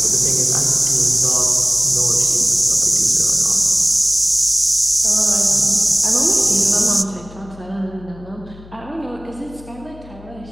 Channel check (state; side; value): noise; left; hum, 20 dB below the sound